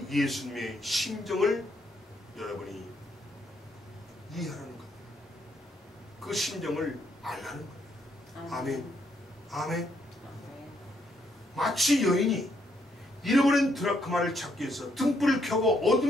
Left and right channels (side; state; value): both; normal; correlation 0.74